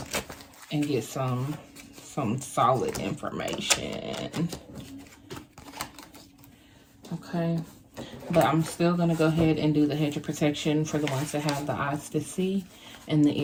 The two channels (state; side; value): identical; both; correlation 1.00